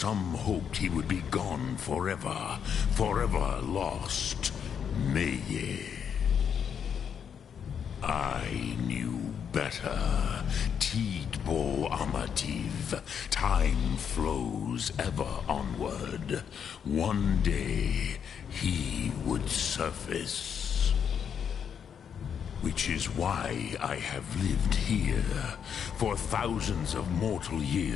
hoped he would be gone forever, forever lost. Meye. I knew better. Tidbo Amativ. Time flows ever onward. One day, he would surface. Which is why I have lived here. For thousands of mortal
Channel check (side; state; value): right; quieter; 7.7 dB